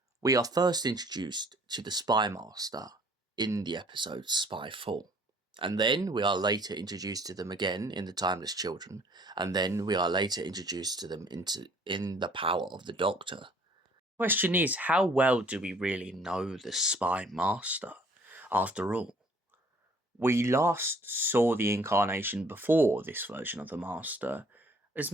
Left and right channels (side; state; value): both; normal; correlation 0.58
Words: we are first introduced to the spymaster in the episode Spyfall, and then we are later introduced to them again in the Timeless Children, and then we are later introduced to them in the Power of the Doctor. The question is, how well do we really know the spymaster? After all, we last saw the incarnation before this version of the Master as